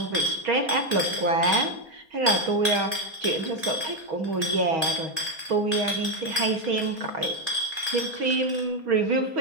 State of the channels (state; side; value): late; left; 4.2 ms